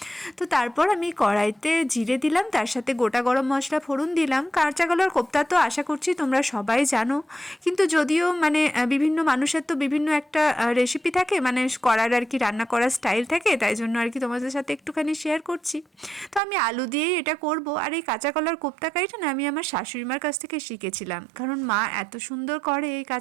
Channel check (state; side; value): drops out; left; at 16.4 s